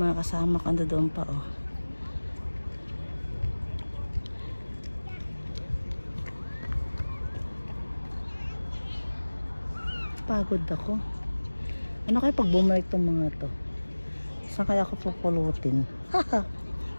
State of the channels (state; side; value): inverted; both; correlation -1.00